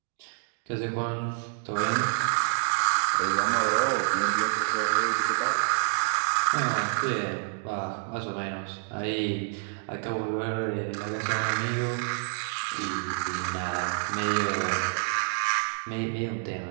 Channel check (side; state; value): left; silent; digital silence